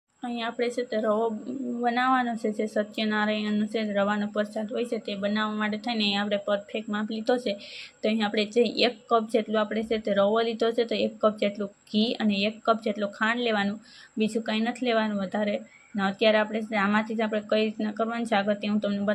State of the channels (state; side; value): identical; both; correlation 1.00